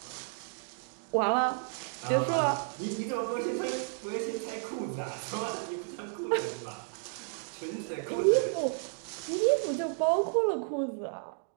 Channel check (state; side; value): silent; left; 56 dB below the other